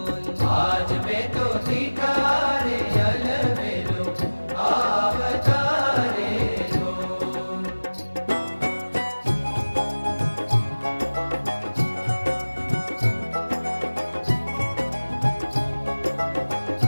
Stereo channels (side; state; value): both; inverted; correlation -1.00